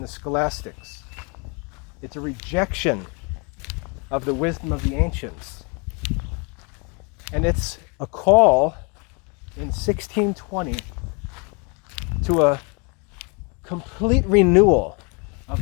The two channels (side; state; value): right; quieter; 33.1 dB